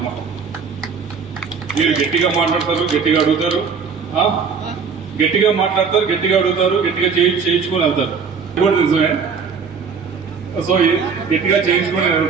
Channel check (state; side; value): quieter; left; 5.8 dB